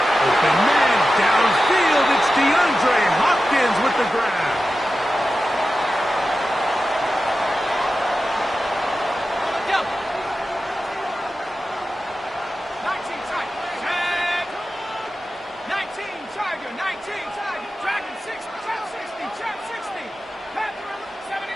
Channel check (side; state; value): both; normal; correlation 0.93